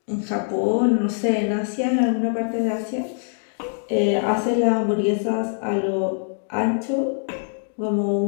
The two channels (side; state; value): right; silent; digital silence